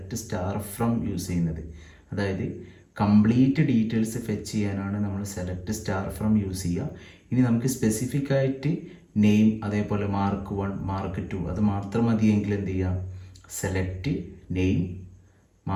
സ്റ്റാർ ഫ്രം യൂസ് ചെയ്യുന്നത്. അതായത് കംപ്ലീറ്റ് ഡീറ്റെയിൽസ് ഫെച്ച് ചെയ്യാനാണ് നമ്മൾ സെലക്ട് സ്റ്റാർ ഫ്രം യൂസ് ചെയ്യുക. ഇനി നമുക്ക് സ്പെസിഫിക് ആയിട്ട് നെയിം, അതേപോലെ മാർക്ക് 1 മാർക്ക് 2 അത് മാത്രം മതിയെങ്കിൽ എന്ത് ചെയ്യാം? സെലക്ട് നെയിം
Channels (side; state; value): both; identical; correlation 1.00